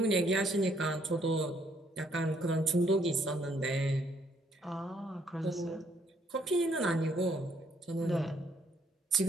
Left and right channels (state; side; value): normal; both; correlation 0.68